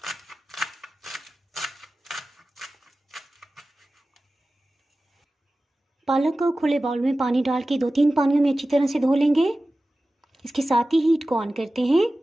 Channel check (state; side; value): normal; both; correlation 0.96